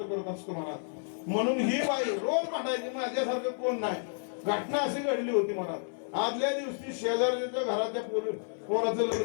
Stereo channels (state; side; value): silent; right; 57 dB below the other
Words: करत असतो महाराज. म्हणून ही बाई रोज भांडायची, माझ्यासारखं कोण नाही. घटना अशी घडली होती महाराज. आदल्या दिवशी शेजारच्या घराच्या पोराचं